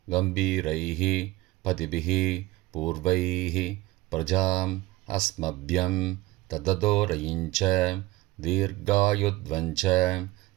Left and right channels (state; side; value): quieter; left; 19.2 dB